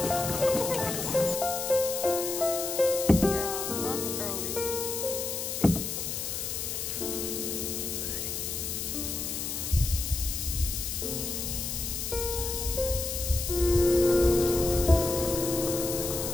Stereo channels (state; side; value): noise; left; hiss, 3 dB below the sound